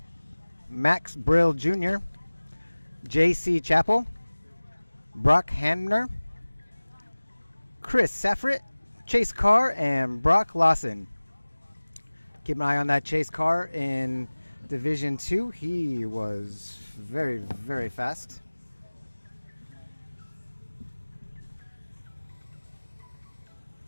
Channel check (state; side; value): inverted; both; correlation -1.00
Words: Max Brill Jr., J.C. Chappell, Brock Hamner, Chris Safrit, Chase Carr, and Brock Lawson. Keep an eye on that Chase Carr in Division 2. He was very, very fast.